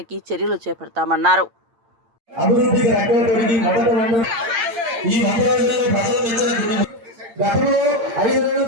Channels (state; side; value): late; left; 8.8 ms